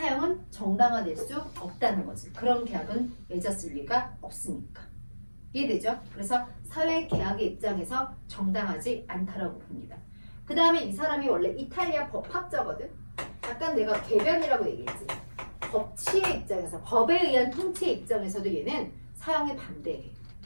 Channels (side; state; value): both; inverted; correlation -1.00